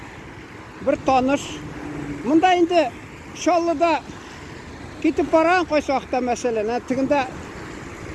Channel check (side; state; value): both; identical; correlation 1.00